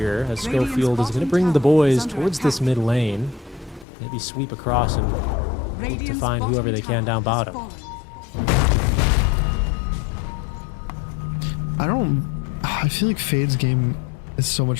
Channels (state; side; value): drops out; right; at 3.9 s